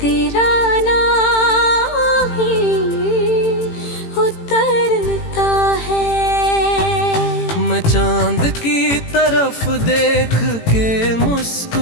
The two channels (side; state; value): right; late; 18 ms